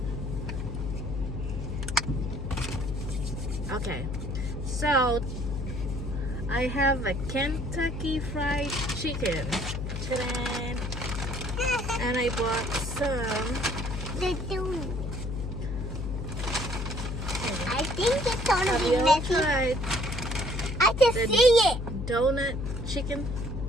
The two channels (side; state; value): left; noise; hum, 5 dB below the sound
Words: Okay, so I have a Kentucky Fried Chicken. Ta-da! And I bought some. I think it's gonna Have be you messy. tried I can the see it. donut chicken